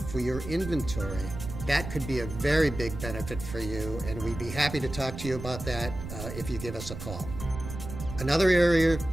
for your inventory. That could be a very big benefit for you, and we'd be happy to talk to you about that if you give us a call. Another area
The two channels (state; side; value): noise; right; rumble, 9 dB below the sound